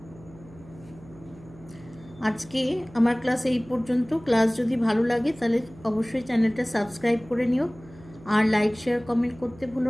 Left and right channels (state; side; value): noise; right; hum, 21 dB below the sound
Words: আজকে আমার ক্লাস এই পর্যন্ত। ক্লাস যদি ভালো লাগে তাহলে অবশ্যই চ্যানেলটা সাবস্ক্রাইব করে নিও, আর লাইক শেয়ার কমেন্ট করতে